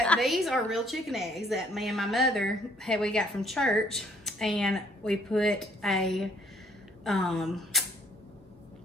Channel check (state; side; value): normal; both; correlation 0.63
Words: These are real chicken eggs that me and my mother we got from church, and we put a